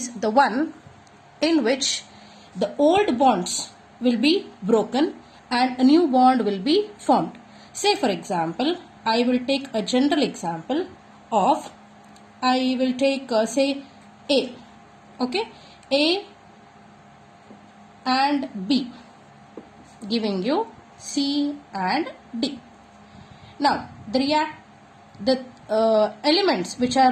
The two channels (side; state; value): both; identical; correlation 1.00